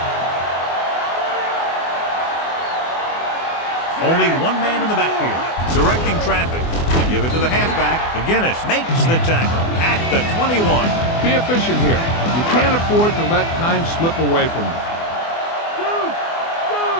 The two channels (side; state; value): right; late; 24 ms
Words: Only 1 man in the backfield, directing traffic. They give it to the halfback. McGinnis makes the tackle at the 21. Be efficient here. You can't afford to let time slip away from you.